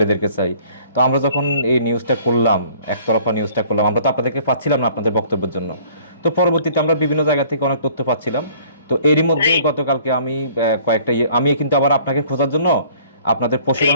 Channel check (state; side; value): inverted; both; correlation -0.55